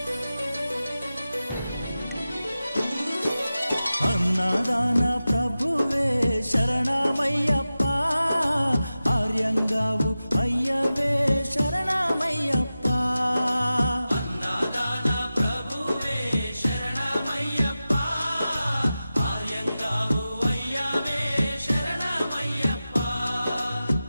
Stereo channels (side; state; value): both; inverted; correlation -0.94